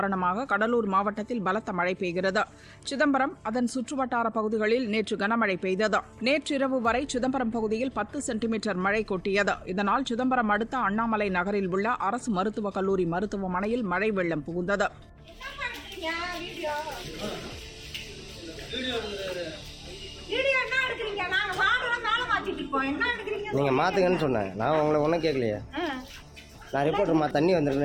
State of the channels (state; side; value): identical; both; correlation 1.00